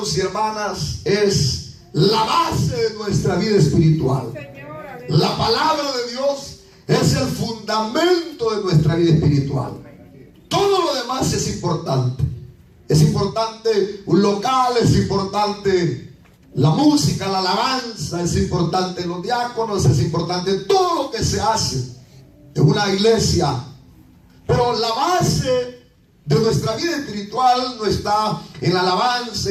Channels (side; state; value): both; identical; correlation 1.00